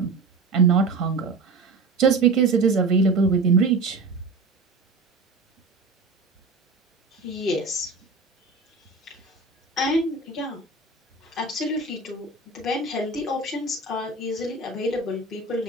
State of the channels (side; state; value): left; quieter; 3.7 dB